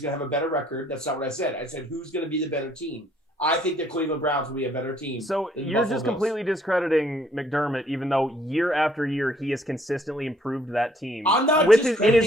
going to have a better record? That's not what I said. I said who's going to be the better team. I think the Cleveland Browns will be a better team. So you're just completely discrediting McDermott, even though year after year he has consistently improved that team. I'm not in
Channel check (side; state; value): both; normal; correlation 0.63